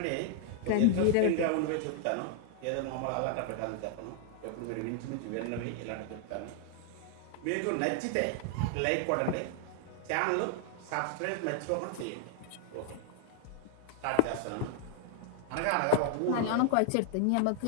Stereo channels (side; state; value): both; different; correlation 0.00